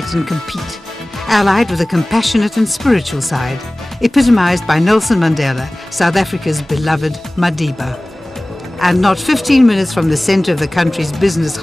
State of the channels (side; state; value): both; normal; correlation 0.98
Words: and compete, allied with a compassionate and spiritual side, epitomized by Nelson Mandela, South Africa's beloved Madiba. And not 15 minutes from the center of the country's business